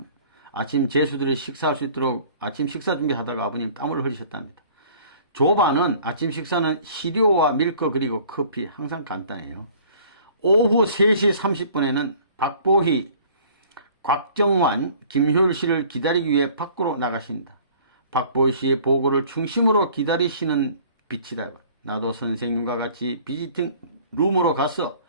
아침 제수들이 식사할 수 있도록 아침 식사 준비하다가 아버님 땀을 흘리셨답니다. 조반은 아침 식사는 시료와 밀크 그리고 커피 항상 간단해요. 오후 3시 30분에는 박보희, 곽정환, 김효율 씨를 기다리기 위해 밖으로 나가신다. 박보희 씨의 보고를 중심으로 기다리시는 빛이다. 나도 선생님과 같이 비지팅 룸으로 가서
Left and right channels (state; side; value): inverted; both; correlation -0.52